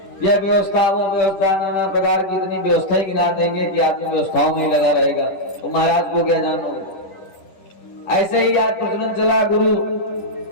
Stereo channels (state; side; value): late; right; 10 ms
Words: यह व्यवस्था वो व्यवस्था, नाना प्रकार की इतनी व्यवस्थाएं गिना देंगे कि आदमी व्यवस्थाओं में लगा रहेगा, तो महाराज को क्या जानो। ऐसे ही आज प्रचलन चला गुरु।